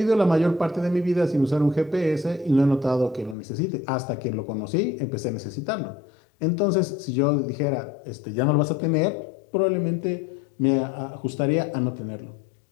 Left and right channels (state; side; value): drops out; right; at 3.4 s